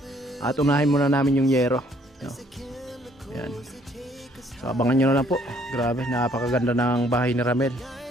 At unahin muna namin yung yero. Ayan. So abangan nyo na lang po. Grabe, napakaganda ng bahay ni Ramel.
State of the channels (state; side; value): normal; both; correlation 0.63